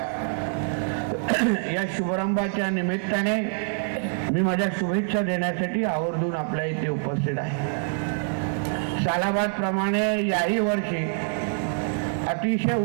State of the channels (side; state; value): left; silent; 61 dB below the other